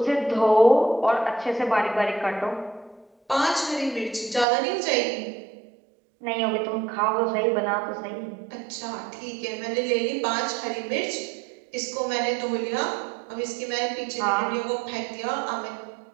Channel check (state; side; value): drops out; left; at 4.5 s